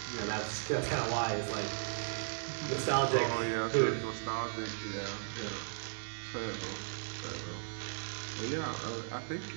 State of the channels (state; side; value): silent; left; 54 dB below the other